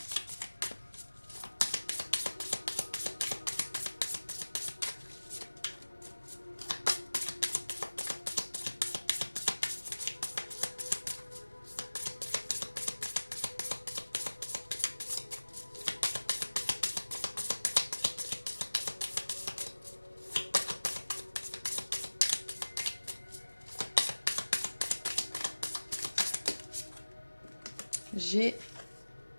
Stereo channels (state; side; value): inverted; both; correlation -1.00